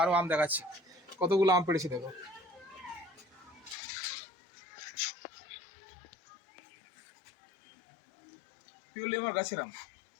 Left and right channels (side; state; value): right; drops out; at 3.8 s